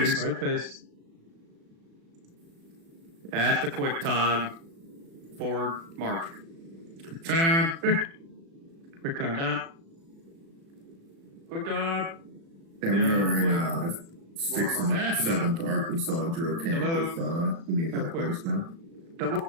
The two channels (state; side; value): late; left; 36 ms